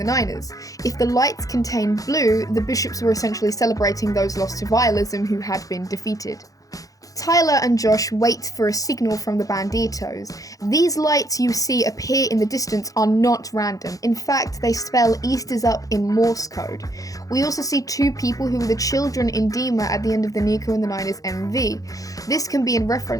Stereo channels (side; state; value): right; late; 0.17 ms